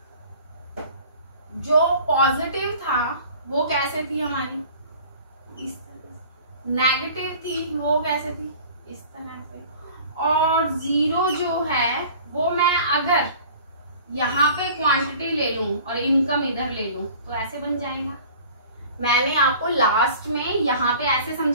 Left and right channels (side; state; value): both; inverted; correlation -0.46